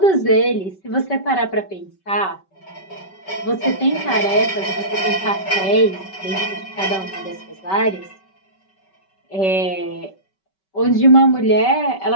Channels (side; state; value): right; late; 5.2 ms